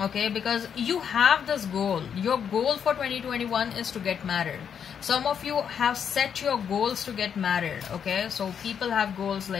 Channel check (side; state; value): right; quieter; 7.8 dB